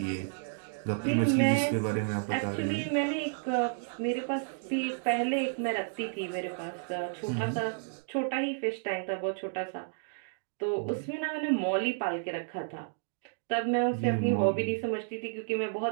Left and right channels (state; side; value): silent; left; digital silence